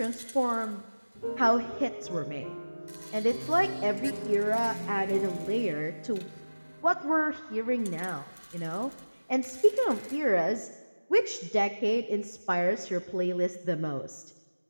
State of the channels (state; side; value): inverted; both; correlation -1.00